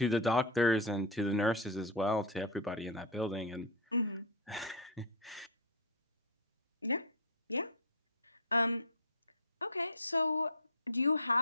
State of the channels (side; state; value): both; normal; correlation -0.01